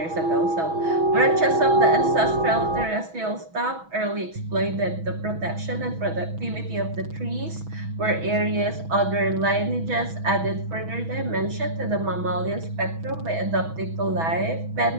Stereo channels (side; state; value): left; late; 6.2 ms